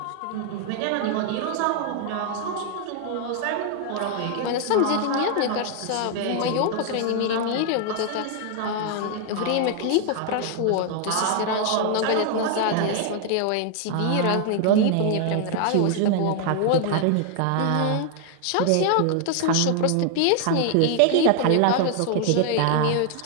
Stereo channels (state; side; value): different; both; correlation 0.00